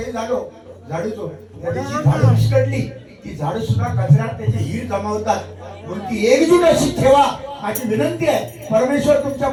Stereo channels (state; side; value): identical; both; correlation 1.00